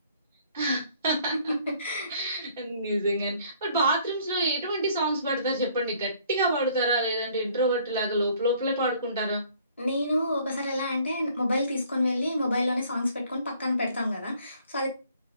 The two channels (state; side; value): inverted; both; correlation -0.60